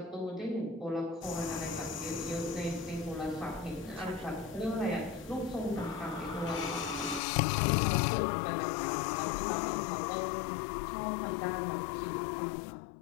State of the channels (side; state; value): right; drops out; at 7.2 s